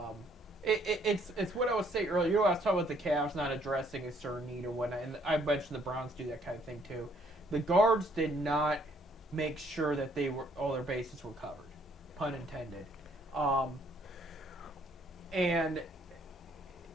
It's what I was saying earlier. I was talking about the Cavs not addressing a certain need or whatnot, and I mentioned the Browns do that kind of thing too. The guards did not make sure that all their bases were covered, pun intended. And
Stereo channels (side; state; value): both; normal; correlation 0.65